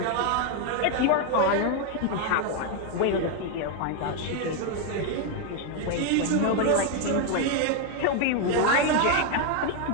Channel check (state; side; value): different; both; correlation 0.01